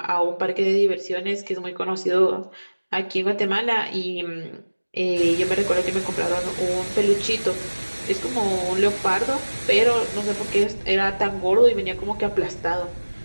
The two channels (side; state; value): both; inverted; correlation -1.00